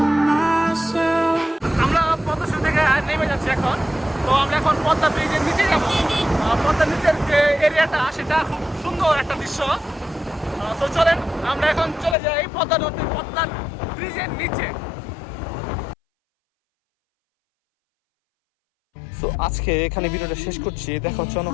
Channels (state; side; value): drops out; right; at 12.2 s